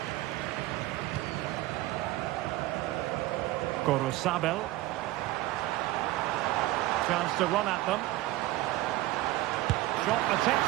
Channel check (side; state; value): left; quieter; 17.2 dB